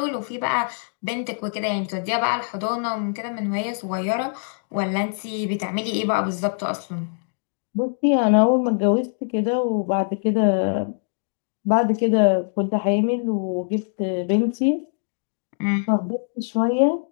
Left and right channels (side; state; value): right; silent; digital silence